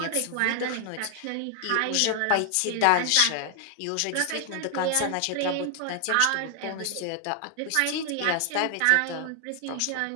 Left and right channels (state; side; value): different; both; correlation 0.00